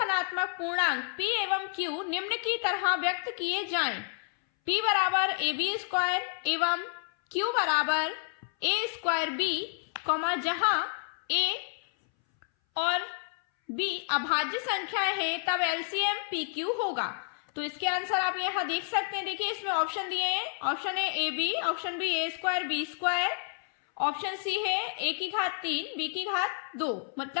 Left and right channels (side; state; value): right; silent; 58 dB below the other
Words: पूर्णांक p एवं q निम्न की तरह व्यक्त किए जाएं, p बराबर ab स्क्वायर एवं q बराबर a स्क्वायर b, जहां a और b अभाज्य संख्याएं हैं, तब एलसीएम pq होगा। तो इसके आंसर आप यहां देख सकते हैं। देखिए इसमें ऑप्शन दिए हैं, option A A B, option B A square B square, option C है a की घात 3 b की घात 2,